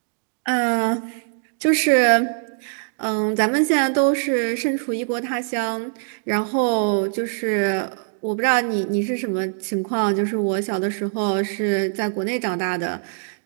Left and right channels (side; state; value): left; silent; digital silence